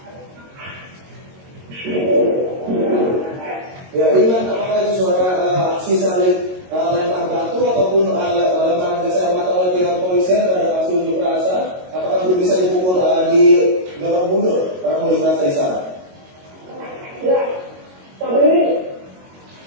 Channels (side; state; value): left; late; 22 ms